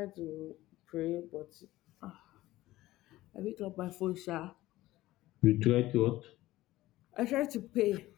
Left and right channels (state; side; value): quieter; right; 16.7 dB